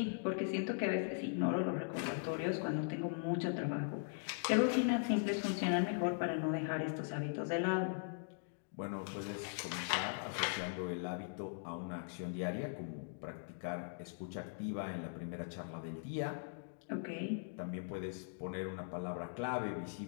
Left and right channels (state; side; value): silent; right; digital silence